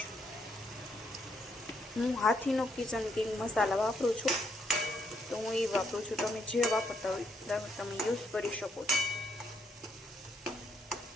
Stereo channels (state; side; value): normal; both; correlation 0.74